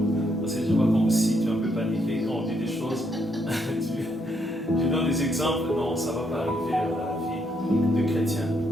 Parce que je vois comme si tu es un peu paniqué quand on dit des choses. Je donne des exemples. Non, ça ne va pas arriver dans la vie de chrétien,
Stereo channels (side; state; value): both; normal; correlation 0.75